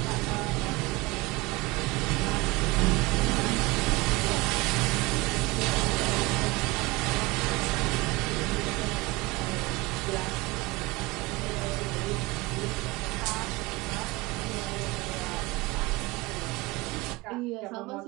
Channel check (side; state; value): left; quieter; 22.1 dB